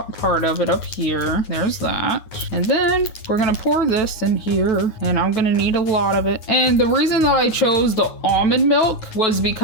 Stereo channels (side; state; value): right; late; 9.2 ms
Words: part of it up here. There's that. And then we're gonna pour this in here, and I'm gonna need a lot of it. And the reason that I chose the almond milk was